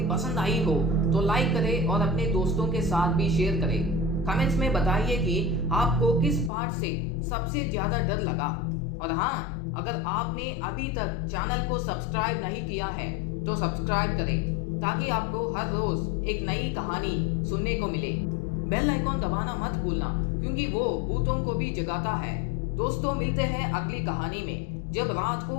पसंद आई हो तो लाइक करें और अपने दोस्तों के साथ भी शेयर करें। कमेंट्स में बताइए कि आपको किस पार्ट से सबसे ज्यादा डर लगा। और हाँ, अगर आपने अभी तक चैनल को सब्सक्राइब नहीं किया है तो सब्सक्राइब करें, ताकि आपको हर रोज एक नई कहानी सुनने को मिले। बेल आइकॉन दबाना मत भूलना, क्योंकि वो भूतों को भी जगाता है। दोस्तों, मिलते हैं अगली कहानी में, जब रात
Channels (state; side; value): drops out; right; at 6.5 s